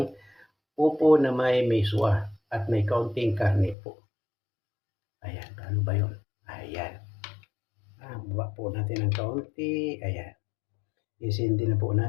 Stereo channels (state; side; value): drops out; right; at 3.8 s